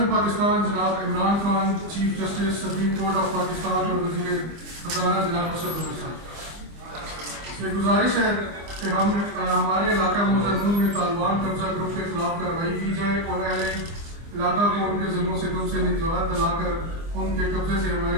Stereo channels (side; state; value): left; late; 25 ms